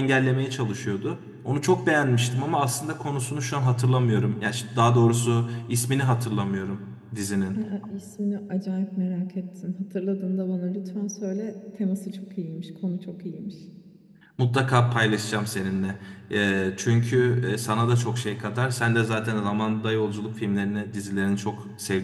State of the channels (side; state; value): both; identical; correlation 1.00